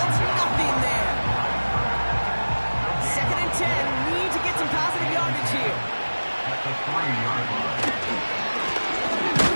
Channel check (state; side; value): inverted; both; correlation -1.00